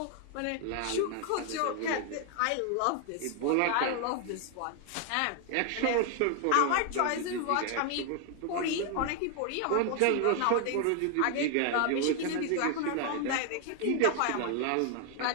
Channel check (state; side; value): different; both; correlation 0.00